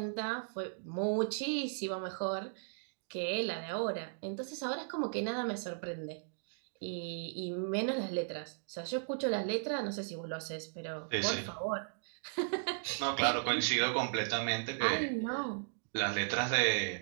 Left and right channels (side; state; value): left; silent; digital silence